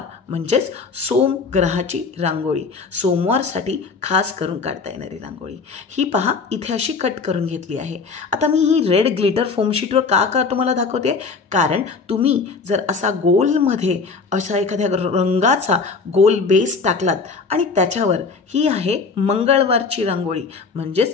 म्हणजेच सोम ग्रहाची रांगोळी. सोमवारसाठी खास करून काढता येणारी रांगोळी. ही पहा इथे अशी कट करून घेतली आहे. आता मी ही रेड ग्लिटर फोम शीटवर का तुम्हाला दाखवते, कारण तुम्ही जर असा गोलमध्ये असा एखाद्या रंगाचा गोल बेस टाकलात आणि त्याच्यावर ही आहे मंगळवारची रांगोळी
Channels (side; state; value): right; quieter; 4.7 dB